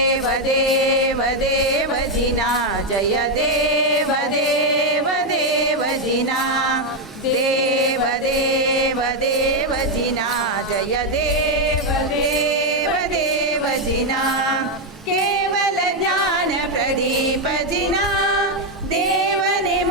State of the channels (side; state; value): both; normal; correlation 0.04